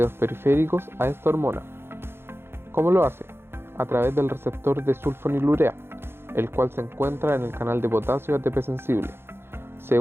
periféricos a esta hormona. ¿Cómo lo hace? A través del receptor de sulfonilurea, el cual se encuentra en el canal de potasio ATP sensible. Se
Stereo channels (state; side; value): late; left; 0.11 ms